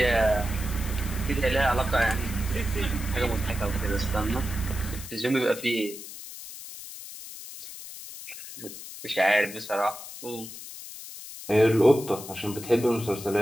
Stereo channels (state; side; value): noise; left; hiss, 12 dB below the sound